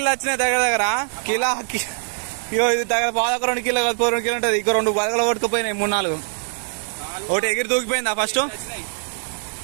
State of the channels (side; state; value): left; silent; 63 dB below the other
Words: వచ్చినాయి దగ్గర కిలో ఇది దగ్గర బాగా 2 కిలో 2 కిలో ఉంటుంది ఇంకో 2 బలగలు కొట్టుకుపోయినాయి 3-4 ఒకటి ఎగిరి దూకిపోయిందా ఫస్ట్